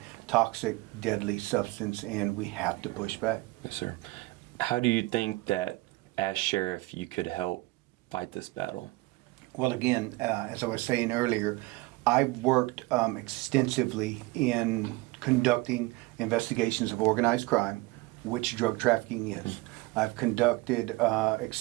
toxic, deadly substance, and we have to push back. Yes, sir. How do you think that, as sheriff, you could help fight this battle? Well, again, as I was saying earlier, I've worked extensively in conducting investigations of organized crime, which drug trafficking is. I've conducted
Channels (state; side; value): quieter; left; 21.8 dB